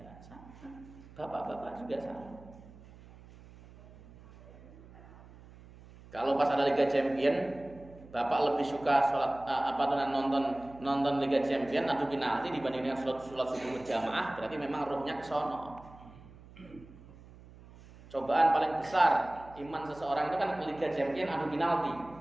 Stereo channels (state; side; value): noise; right; hum, 20 dB below the sound